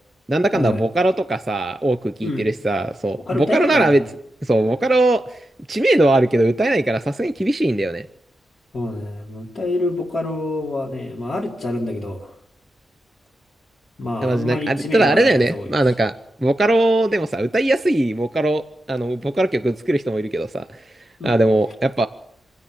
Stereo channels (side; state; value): both; normal; correlation 0.89